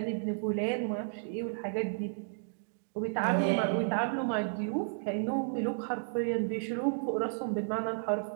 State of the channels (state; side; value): silent; left; digital silence